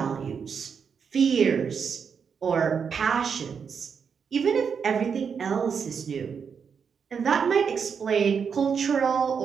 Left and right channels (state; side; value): quieter; left; 6.5 dB